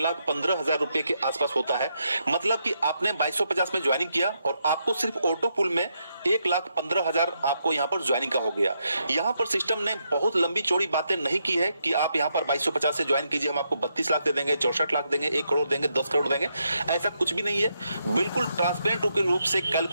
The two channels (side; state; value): both; inverted; correlation -0.80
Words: रुपए के आसपास होता है। मतलब कि आपने 2250 में ज्वाइनिंग किया और आपको सिर्फ ऑटो पुल में 1,15,000 आपको यहाँ पर ज्वाइनिंग का हो गया। यहाँ पर सिस्टम ने बहुत लंबी चौड़ी बातें नहीं की है कि आप यहाँ पर 2250 से ज्वाइन कीजिए, हम आपको 32 लाख दे देंगे, 64 लाख देंगे, 1 करोड़ देंगे, 10 करोड़ देंगे। ऐसा कुछ भी नहीं है। बिल्कुल ट्रांसपेरेंट रूप से